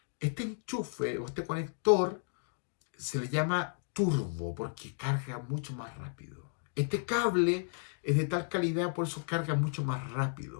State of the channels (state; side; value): silent; right; digital silence